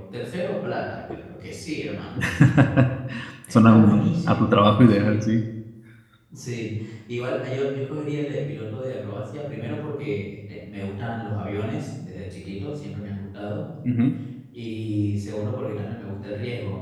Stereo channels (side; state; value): both; identical; correlation 1.00